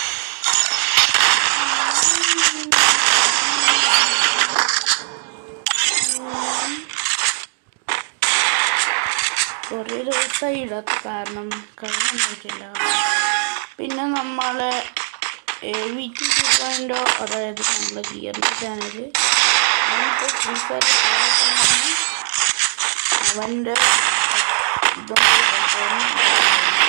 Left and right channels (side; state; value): left; silent; digital silence